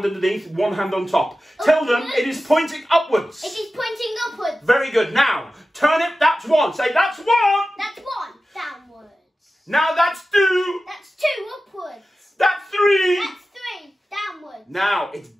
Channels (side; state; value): both; normal; correlation 0.94